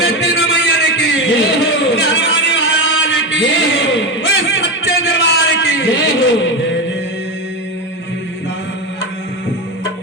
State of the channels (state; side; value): normal; both; correlation 0.17